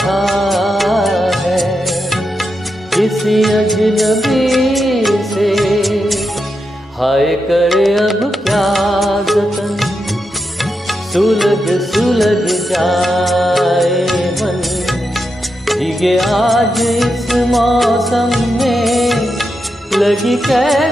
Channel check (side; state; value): both; normal; correlation 0.86